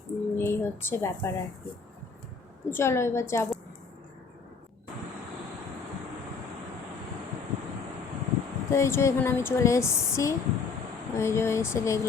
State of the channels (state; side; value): quieter; right; 5.0 dB